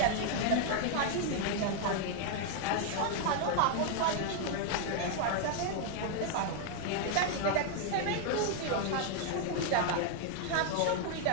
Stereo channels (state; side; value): different; both; correlation 0.00